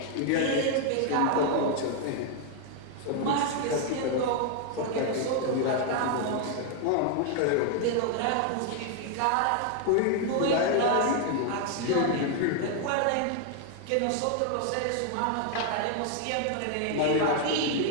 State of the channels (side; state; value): both; different; correlation 0.00